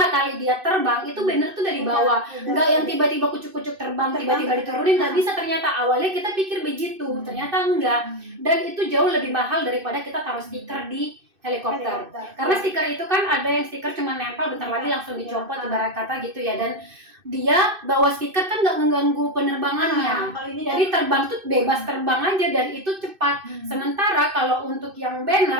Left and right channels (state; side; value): late; left; 2.6 ms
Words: kali dia terbang itu banner tuh dari bawah. Enggak yang tiba-tiba kucuk-kucuk terbang tiba-tiba diturunin, nggak bisa ternyata. Awalnya kita pikir begitu, ternyata enggak. Dan itu jauh lebih mahal daripada kita taruh stiker di helikopter. Karena stiker itu kan ada yang stiker cuma nempel bentar lagi langsung dicopot ibarat kata gitu ya, dan dia bawa stiker kan nggak mengganggu penerbangannya. Jadi terbang tuh bebas terbang aja dan itu cepat. Sementara kalau untuk yang